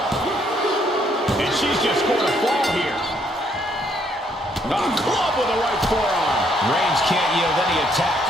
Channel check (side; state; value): both; normal; correlation 0.69